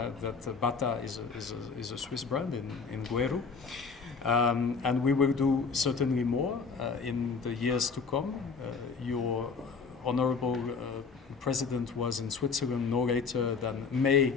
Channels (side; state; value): right; quieter; 5.2 dB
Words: that Bata is a Swiss brand in Gweru. And we will do certainly more in the years to come. Your Honorable President was in Switzerland no later than May